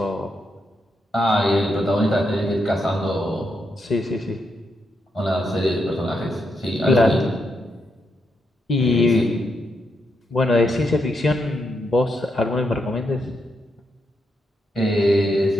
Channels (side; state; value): both; normal; correlation 0.81